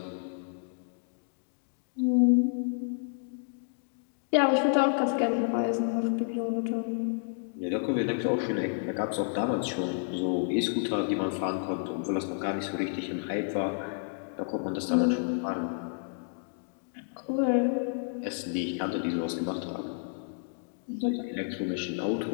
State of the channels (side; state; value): right; silent; digital silence